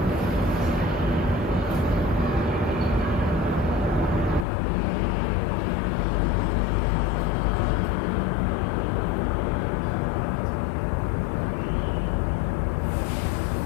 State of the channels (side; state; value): right; drops out; at 4.5 s